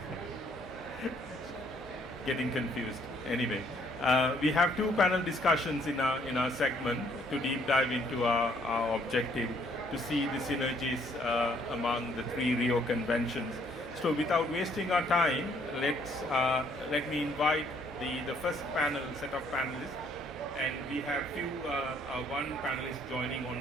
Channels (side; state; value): both; normal; correlation 0.65